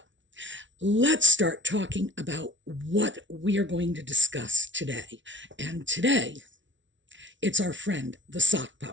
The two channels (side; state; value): left; late; 0.55 ms